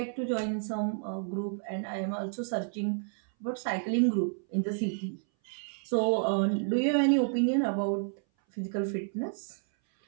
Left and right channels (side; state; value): left; silent; 58 dB below the other